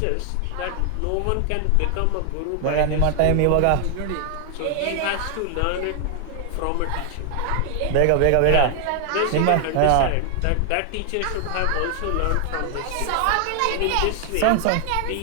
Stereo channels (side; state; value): both; different; correlation 0.00